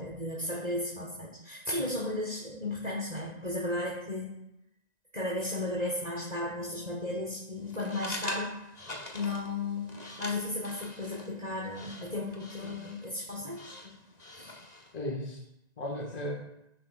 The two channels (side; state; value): left; late; 1.9 ms